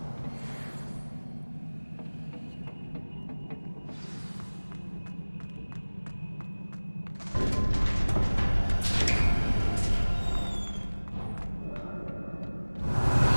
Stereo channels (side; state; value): both; inverted; correlation -1.00